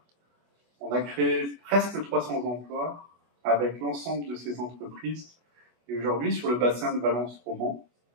On a créé presque 300 emplois avec l'ensemble de ces entreprises. Et aujourd'hui, sur le bassin de Valence-Romans,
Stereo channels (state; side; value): late; left; 25 ms